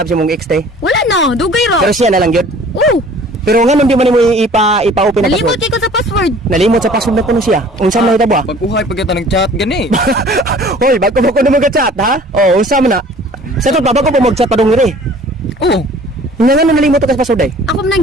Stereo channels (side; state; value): both; normal; correlation 0.50